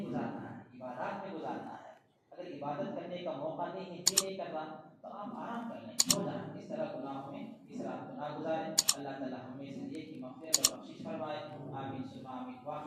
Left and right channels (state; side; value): identical; both; correlation 1.00